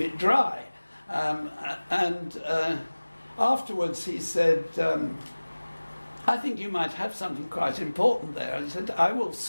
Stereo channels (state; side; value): inverted; both; correlation -1.00